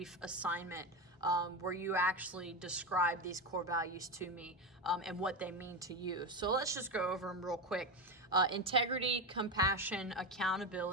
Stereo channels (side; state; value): both; normal; correlation 0.16